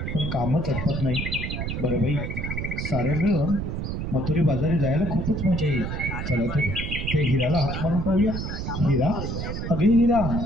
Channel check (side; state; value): right; noise; rumble, 4 dB below the sound